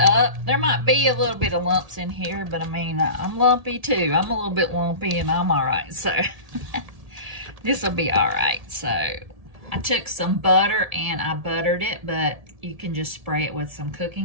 There might be a little bit of lumps in here, but I mean, I'm lumpy too. I'm a little bit lumpy and I'm all right, so this will be all right. So I took some butter and I buttered it, but you can just spray it with some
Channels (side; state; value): left; late; 1.7 ms